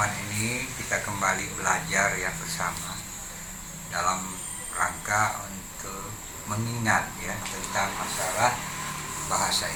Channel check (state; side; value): identical; both; correlation 1.00